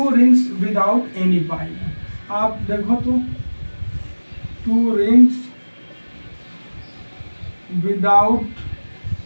rings without any pi bond. आप देखो तो 2 rings without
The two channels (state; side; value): inverted; both; correlation -1.00